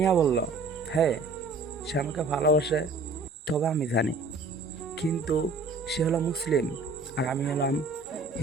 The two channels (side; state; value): left; quieter; 3.7 dB